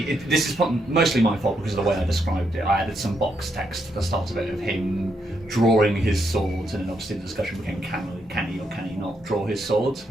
is mostly my fault because of the way I described it. I added some box text at the start of it of him drawing his swords, and then obviously the discussion became can he or can he not draw his sword?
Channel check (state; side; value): normal; both; correlation 0.79